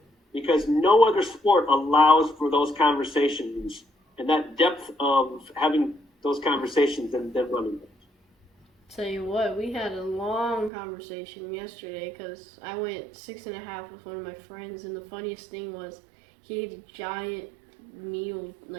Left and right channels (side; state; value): left; drops out; at 10.7 s